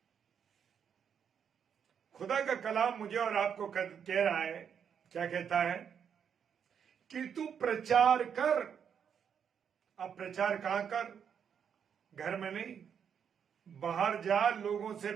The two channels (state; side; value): quieter; left; 7.7 dB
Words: खुदा का कलाम मुझे और आपको कह रहा है, क्या कहता है कि तू प्रचार कर। अब प्रचार कहां कर, घर में नहीं, बाहर जा, लोगों से